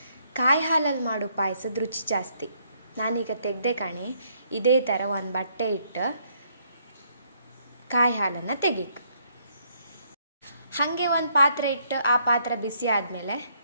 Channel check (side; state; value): both; inverted; correlation -0.70